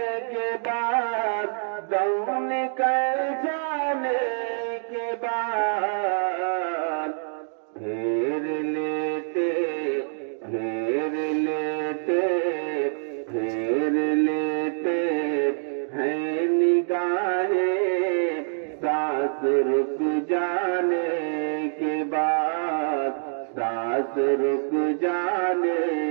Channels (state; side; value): silent; left; digital silence